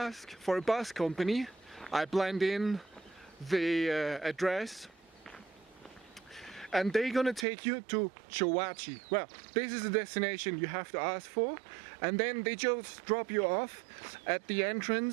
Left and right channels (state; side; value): drops out; left; at 7.5 s